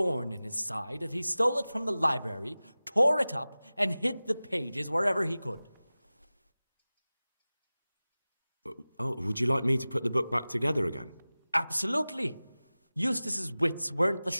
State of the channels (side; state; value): both; inverted; correlation -0.98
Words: in his side that he stole it from the library, tore it up, and hid the pages wherever he could. Oh, would you like me to put the book back together again? Absolutely. Eustace's wits weren't the